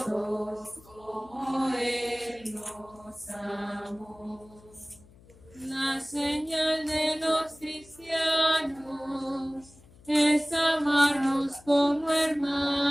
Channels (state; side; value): noise; left; hum, 25 dB below the sound